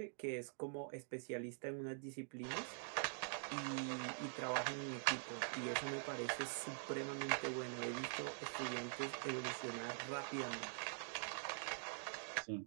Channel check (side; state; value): left; silent; digital silence